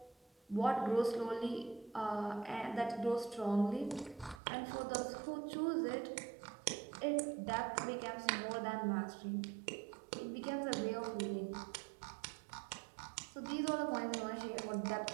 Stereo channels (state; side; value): drops out; left; at 4.4 s